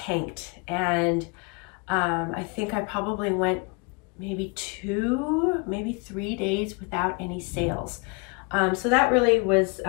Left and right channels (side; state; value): right; quieter; 31.1 dB